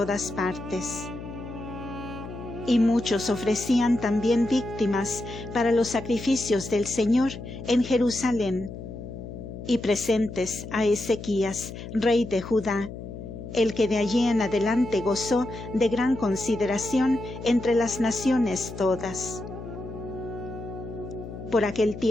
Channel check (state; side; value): noise; left; hum, 10 dB below the sound